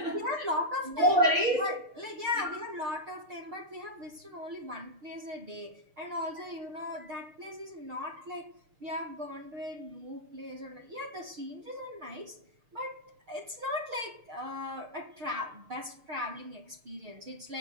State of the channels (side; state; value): left; late; 6.6 ms